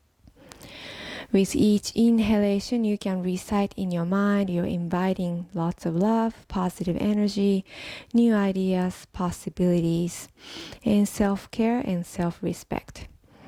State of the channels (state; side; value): identical; both; correlation 1.00